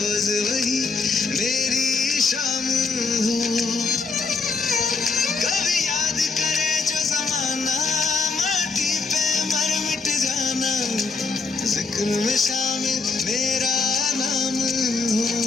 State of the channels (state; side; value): quieter; right; 4.3 dB